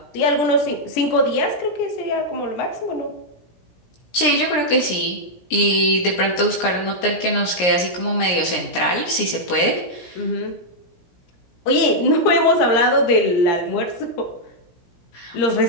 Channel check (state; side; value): late; right; 17 ms